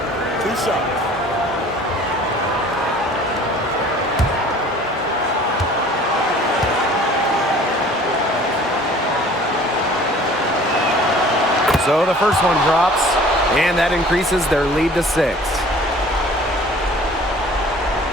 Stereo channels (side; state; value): both; normal; correlation 0.49